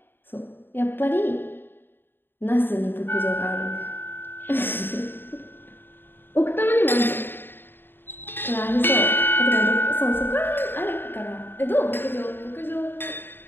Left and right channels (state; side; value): late; right; 0.098 ms